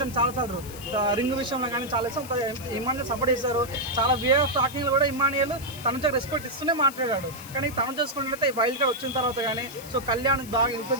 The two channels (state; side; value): noise; left; hiss, 16 dB below the sound